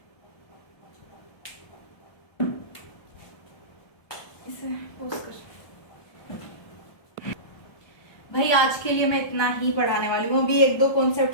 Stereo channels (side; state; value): right; late; 1.3 ms